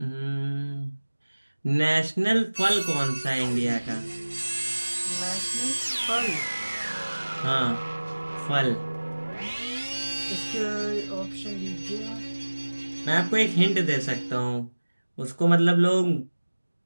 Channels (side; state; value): both; inverted; correlation -1.00